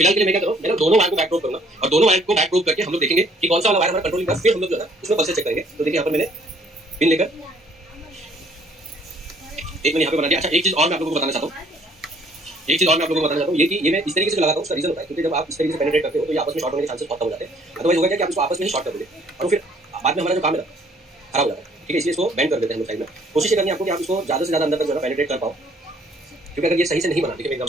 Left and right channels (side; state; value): both; normal; correlation 0.61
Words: के लिए मैं क्या करूँ, मैं दोनों वायर को बैक प्रोब करूंगा, और दोनों वायर को बैक प्रोब करके हम लोग देखेंगे कि कौन सा वाला वायर हमारा कंट्रोलिंग है। फिर हम लोग जो है उसमें पल्सेस चेक करेंगे। तो देखिए यहाँ पर मैंने पिन लेकर एक मैंने यहाँ पे बना दिया। अच्छा, एक चीज और मैं आप लोगों को बताना चाहता हूँ, ये कि ये मैं इस तरीके से लगाता हूँ। उसका रीजन होता है क्योंकि जब आप इस तरीके से पेनिट्रेट करते हो तो ये आपस में शॉर्ट होने के चांसेस बहुत कम हो जाते हैं। अदरवाइज होगा क्या कि आप इसको आपस में ही शॉर्ट कर दोगे और फिर बाद में हमारा जो काम है ना खराब हो जाता है। ठीक है, इसलिए इसको बैंड कर देते हैं हम लोग साइड में। कोशिश करनी है आपको कि आप इसको ज़्यादा से ज़्यादा अंदर तक जो है पेनिट्रेट कर पाओ, क्योंकि अगर ये सही से नहीं बना, देखिए मैं